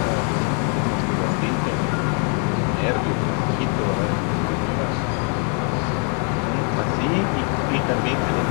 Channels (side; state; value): right; quieter; 40.0 dB